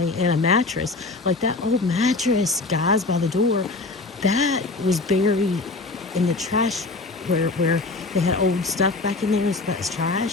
And a mattress, like that old mattress, guys, by the door, that was buried in the trash where they had old stuff back in there. So that's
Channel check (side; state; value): right; quieter; 3.4 dB